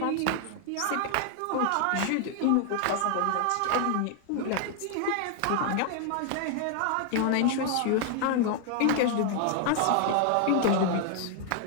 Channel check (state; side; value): different; both; correlation 0.00